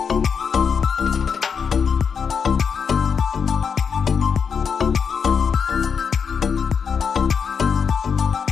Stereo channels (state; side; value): quieter; right; 6.4 dB